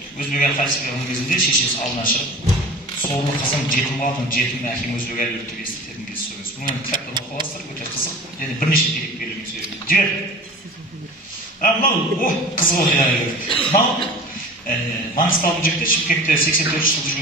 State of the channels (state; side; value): normal; both; correlation 0.38